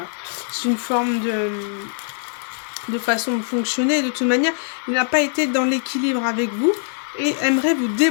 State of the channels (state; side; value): silent; right; digital silence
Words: c'est une forme de façon de fonctionner. De toute manière, il n'a pas été dans l'équilibre avec vous et aimerait vous